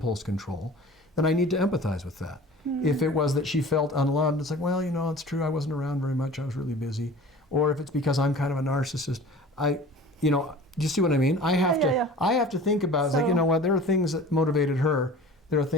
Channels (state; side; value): normal; both; correlation 0.42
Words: control, then I need to empathize with that. If it was that she felt unloved, it's like, well, it's true, I wasn't around very much, I was really busy. Or if it's because I'm kind of a narcissist, do you see what I mean? I have to think about, it's like, you know what, there are things that motivated her, there are